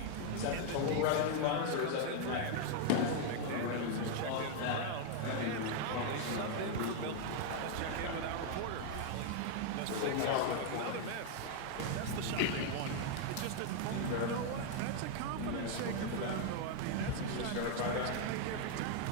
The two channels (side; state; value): both; different; correlation 0.00